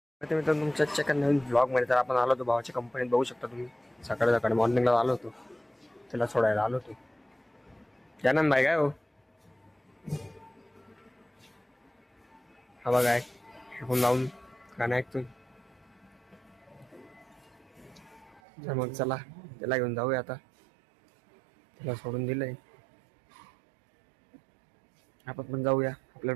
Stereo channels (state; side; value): drops out; left; at 18.4 s